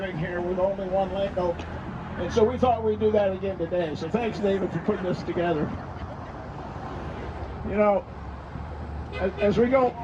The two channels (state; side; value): identical; both; correlation 1.00